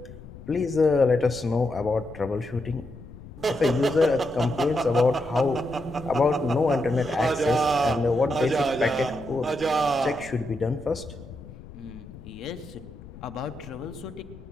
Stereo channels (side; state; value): left; noise; rumble, 17 dB below the sound